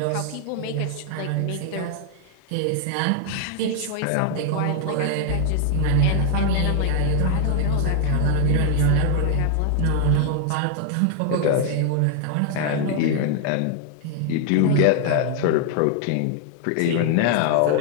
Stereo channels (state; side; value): different; both; correlation 0.00